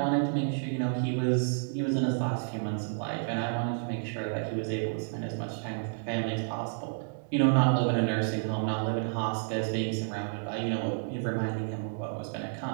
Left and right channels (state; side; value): silent; left; digital silence